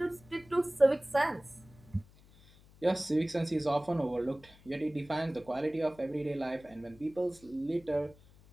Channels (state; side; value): noise; left; hum, 25 dB below the sound